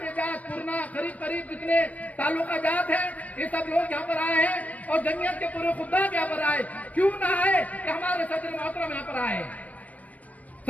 جات پورنا قریب جتنے تعلقہ جات ہیں یہ سب لوگ یہاں پر آئے ہیں اور جمعیت کے پورے خدام یہاں پر آئے. کیوں نہ آئے کہ ہمارے صدر محترم یہاں پر آئے ہیں.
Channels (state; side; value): late; right; 0.070 ms